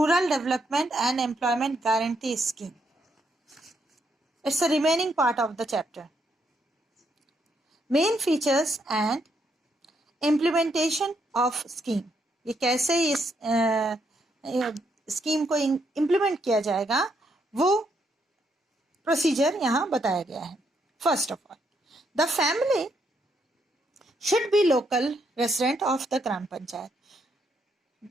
Development and Employment Guarantee Scheme. It's the remaining part of the chapter. Main features and implementation of scheme. ये कैसे इस scheme को implement किया जाएगा वो procedure यहाँ बताया गया है. First of all, the family should be local resident of the gram panchayat.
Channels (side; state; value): both; normal; correlation 0.76